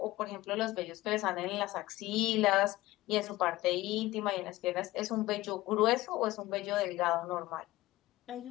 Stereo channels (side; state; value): right; quieter; 17.9 dB